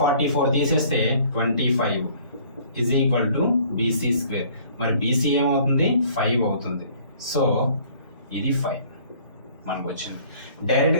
తీసేస్తే 25 is equal to BC square. మరి BC ఏమవుతుంది? 5 అవుతుంది. So ఇది 5. మనకు వచ్చింది.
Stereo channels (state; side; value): inverted; both; correlation -0.56